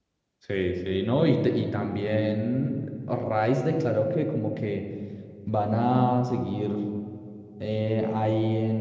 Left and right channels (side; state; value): both; identical; correlation 1.00